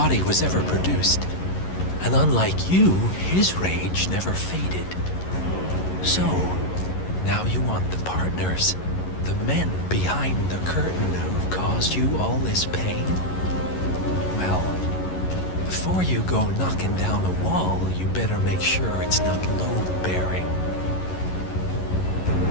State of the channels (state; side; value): late; right; 11 ms